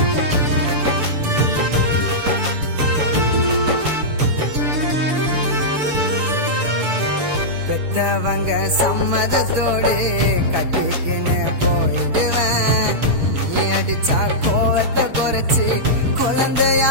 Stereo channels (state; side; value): late; left; 6.9 ms